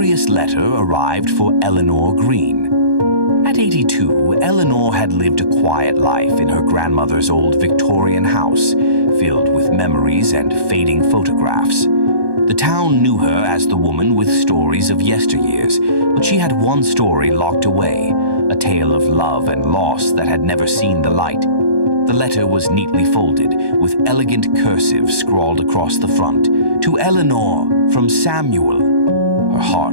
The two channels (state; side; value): late; left; 1.2 ms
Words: letter arrived for Eleanor Green. At 82, Eleanor had lived a quiet life in her grandmother's old Victorian house, filled with memories and fading photographs. The town knew her as the woman with stories of yesteryears, but she had one story locked away, a tale of love and loss that had never seen the light. The letter was neatly folded, with elegant cursive scrawled across the front. To Eleanor, from Samuel. Her